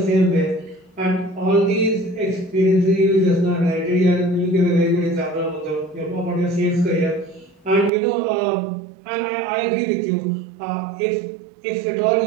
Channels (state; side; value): drops out; left; at 7.9 s